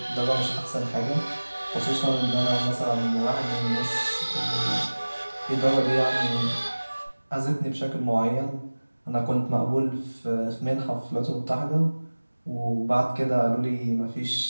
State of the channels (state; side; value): inverted; both; correlation -1.00